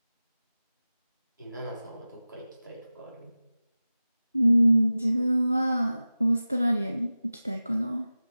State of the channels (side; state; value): both; inverted; correlation -0.98